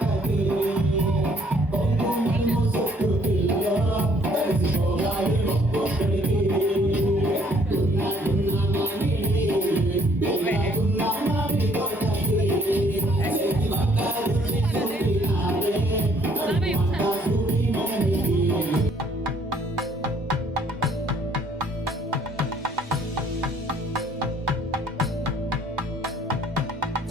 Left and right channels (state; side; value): normal; both; correlation 0.63